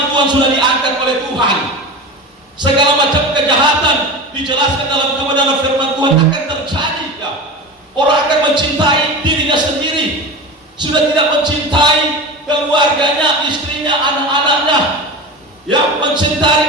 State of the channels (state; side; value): normal; both; correlation 0.28